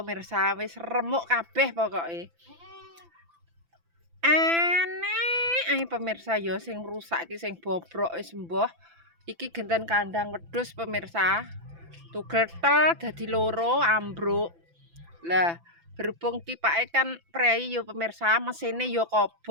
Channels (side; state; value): left; late; 5.9 ms